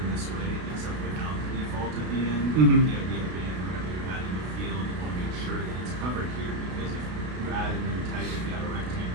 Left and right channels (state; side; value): late; left; 33 ms